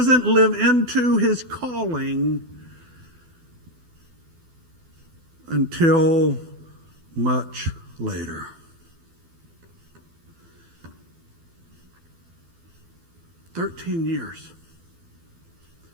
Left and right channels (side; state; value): left; late; 12 ms